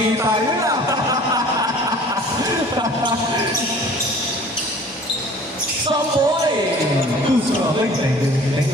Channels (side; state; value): both; normal; correlation 0.48